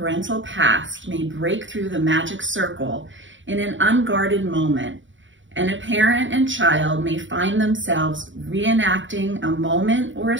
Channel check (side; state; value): left; late; 0.55 ms